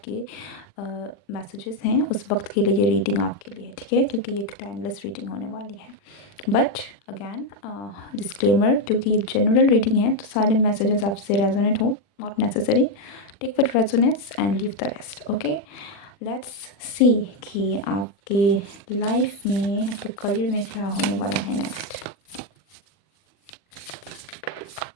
मैसेजेस हैं, उस वक्त के लिए ये रीडिंग आपके लिए है, ठीक है, क्योंकि ये एक टाइमलेस रीडिंग होने वाली है। बट अगेन डिस्क्लेमर, क्योंकि ये जनरल रीडिंग है तो सारे मैसेजेस आपसे रेजोनेट हो not necessary. Take what resonates and leave the rest. Okay, let's see कि आपके लाइफ में, आपके करियर में क्या होने वाला है नेक्स्ट।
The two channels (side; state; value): right; late; 40 ms